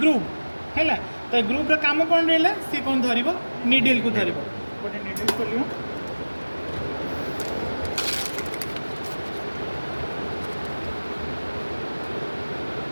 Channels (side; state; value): both; inverted; correlation -1.00